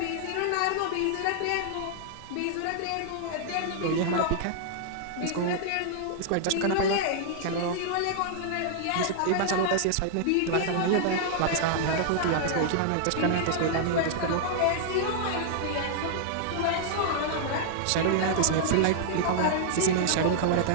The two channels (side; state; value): both; different; correlation -0.01